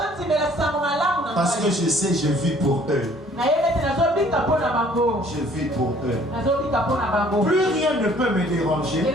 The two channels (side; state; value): both; normal; correlation 0.57